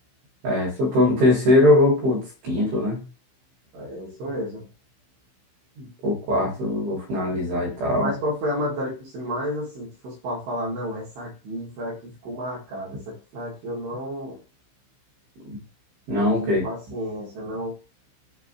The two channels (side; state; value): left; late; 15 ms